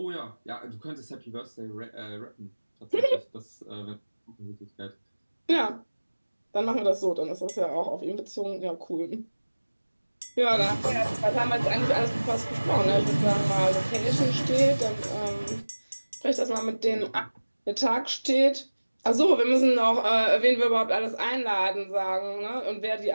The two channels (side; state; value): both; inverted; correlation -1.00